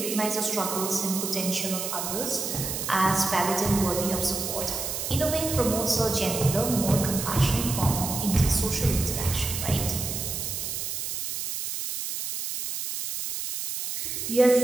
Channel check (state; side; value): noise; right; hiss, 4 dB below the sound